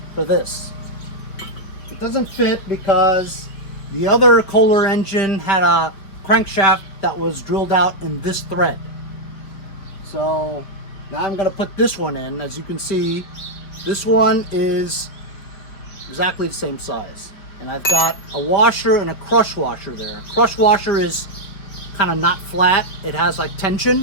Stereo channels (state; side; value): late; right; 5.4 ms